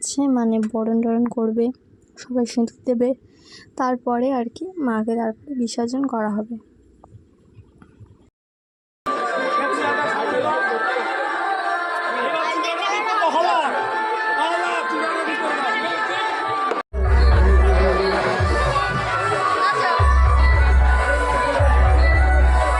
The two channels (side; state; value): both; identical; correlation 1.00